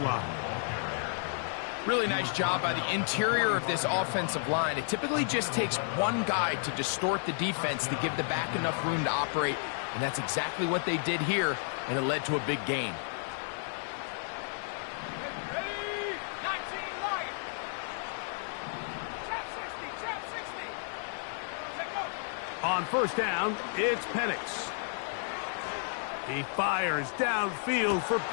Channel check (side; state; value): right; silent; digital silence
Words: line. Really nice job by the interior of this offensive line. It typically just takes one guy to distort the defense to give the back enough room to operate, and that's exactly what they did here, and it led to a big gain. On 1st down, it's Penix. He fires downfield for